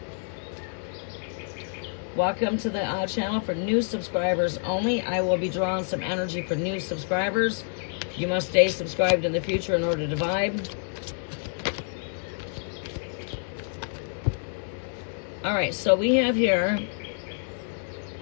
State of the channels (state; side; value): silent; right; digital silence